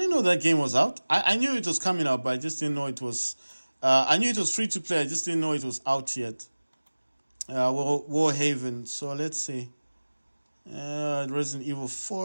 know that game was out. I knew it was coming out, but I just didn't know it was... I knew it was free to play. I just didn't know it was out yet. Warhaven. So let's see. Resident Evil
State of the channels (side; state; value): both; inverted; correlation -1.00